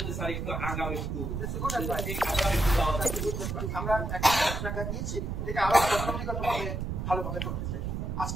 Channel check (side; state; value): right; noise; rumble, 3 dB below the sound